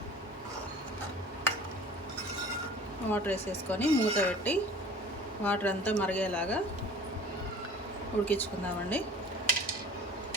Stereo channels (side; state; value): both; normal; correlation 0.46